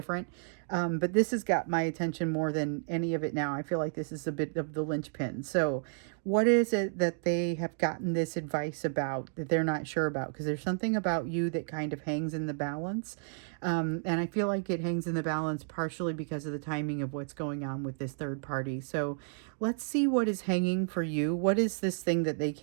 but this has got my attention more than any of it now. I feel like this is a bit of the linchpin. So, what is it that they have gotten this advice about that they're not sure about? Because there's something about you that kind of hangs in the balance, and I feel like it hangs in the balance partially because of the timing of what's going on with this third party. So, let's see what is hanging for you. What is this thing that they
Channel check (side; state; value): left; silent; digital silence